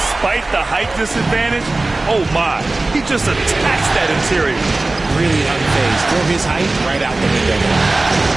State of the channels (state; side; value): quieter; left; 3.1 dB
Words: the height disadvantage, oh my, he just attacks that interior. Really unfazed. Throw his height right out the window.